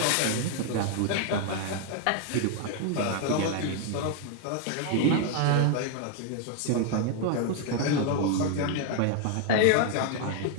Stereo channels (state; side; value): different; both; correlation 0.00